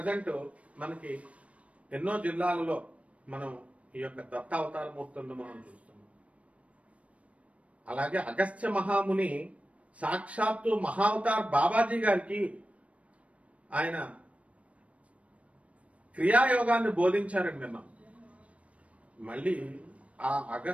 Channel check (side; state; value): left; late; 0.064 ms